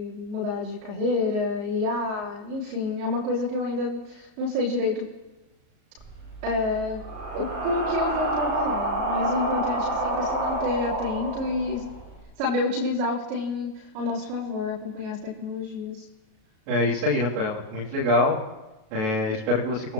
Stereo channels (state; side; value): late; left; 37 ms